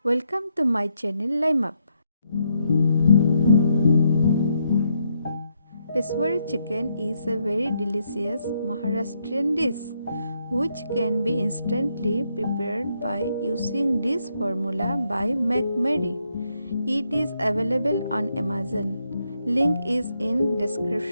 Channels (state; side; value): inverted; both; correlation -0.78